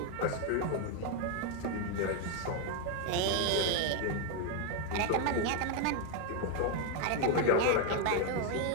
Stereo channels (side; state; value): both; different; correlation 0.00